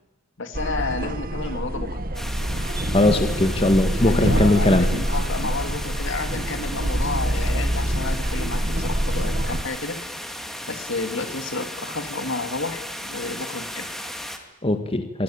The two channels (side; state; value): both; normal; correlation 0.66